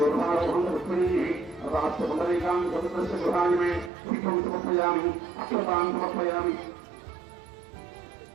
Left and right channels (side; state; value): left; drops out; at 3.9 s